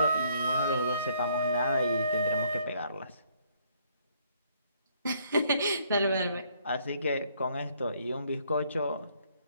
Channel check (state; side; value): inverted; both; correlation -0.66